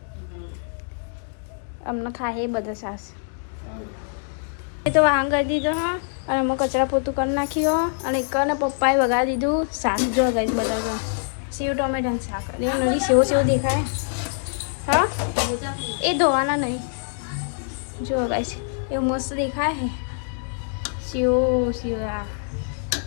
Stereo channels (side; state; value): right; silent; digital silence